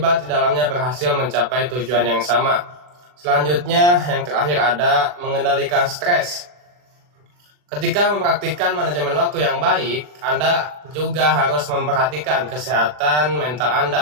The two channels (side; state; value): left; late; 40 ms